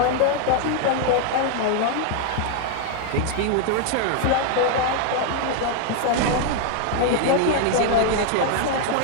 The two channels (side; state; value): both; different; correlation 0.00